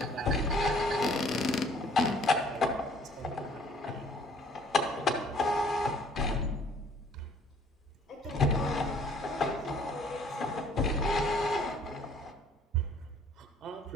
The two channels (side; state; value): both; normal; correlation 0.58